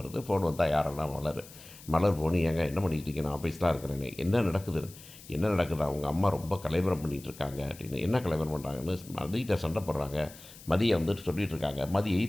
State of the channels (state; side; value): noise; left; hiss, 19 dB below the sound